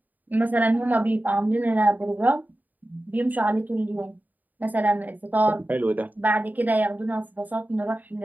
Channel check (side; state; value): left; late; 0.083 ms